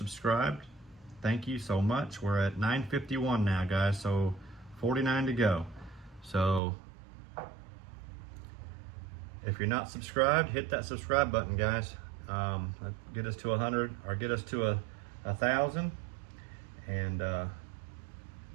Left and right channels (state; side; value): drops out; left; at 6.6 s